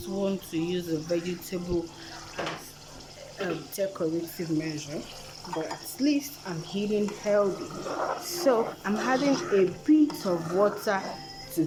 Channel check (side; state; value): both; identical; correlation 1.00